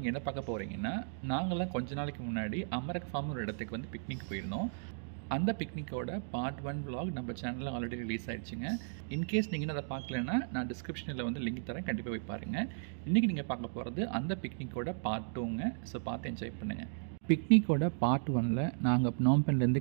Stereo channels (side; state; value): left; silent; digital silence